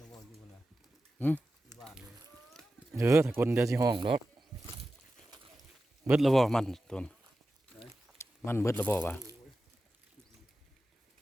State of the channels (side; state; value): both; normal; correlation 0.93